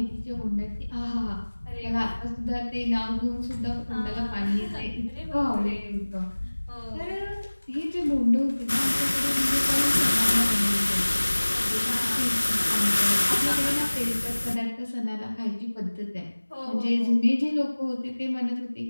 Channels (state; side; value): inverted; both; correlation -1.00